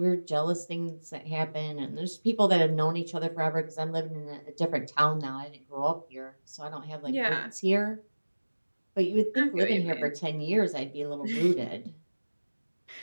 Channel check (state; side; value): inverted; both; correlation -1.00